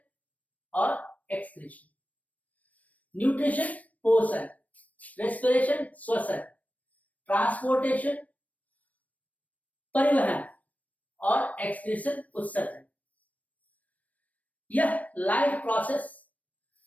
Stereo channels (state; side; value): late; right; 0.070 ms